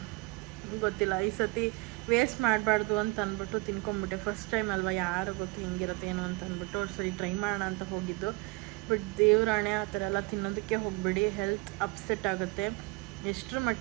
ಗೊತ್ತಿಲ್ಲ, ಈ ಸತಿ ವೇಸ್ಟ್ ಮಾಡಬಾರ್ದು ಅಂತ ಅಂದ್ಬಿಟ್ಟು ತಿನ್ಕೊಂಬಿಟ್ಟೆ. ಫಸ್ಟ್ ಟೈಮ್ ಅಲ್ವಾ, ಯಾರು ಗೊತ್ತು ಹೆಂಗಿರುತ್ತೆ ಏನು ಅಂತ ಅಂದ್ಬಿಟ್ಟು ಸರಿ ಟ್ರೈ ಮಾಡೋಣ ಅಂತ ಹೋಗಿದ್ದು. ಬಟ್ ದೇವ್ರಾಣೆ ಆ ಥರ ಎಲ್ಲ ತಿನ್ನೋದಕ್ಕೆ ಹೋಗಬೇಡಿ, ಹೆಲ್ತ್ ಅಪ್ಸೆಟ್ ಆಗುತ್ತೆ. ಎಷ್ಟರ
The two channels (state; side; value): quieter; left; 25.8 dB